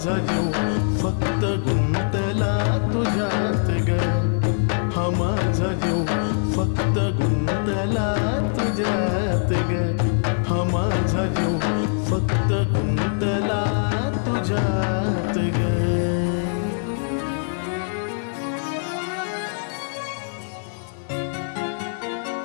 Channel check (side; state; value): right; silent; digital silence